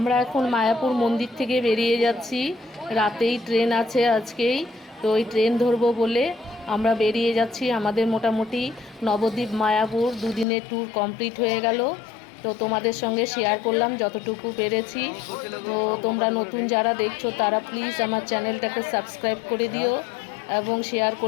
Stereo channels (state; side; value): drops out; right; at 10.5 s